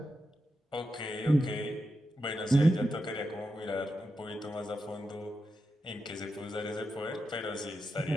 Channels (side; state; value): both; normal; correlation 0.88